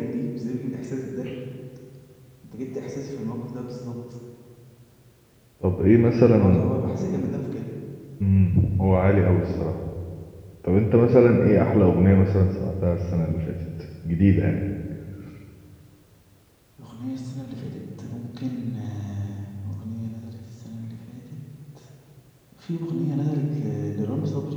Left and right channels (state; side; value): identical; both; correlation 1.00